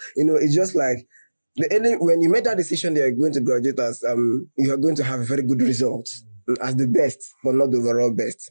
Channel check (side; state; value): both; inverted; correlation -1.00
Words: It's just like when you made that decision that you're going to graduate as you are going to have a very good result as the best, but not the overall best.